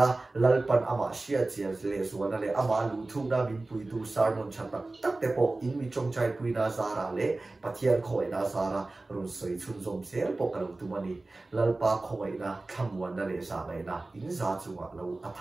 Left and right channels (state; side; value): quieter; left; 3.1 dB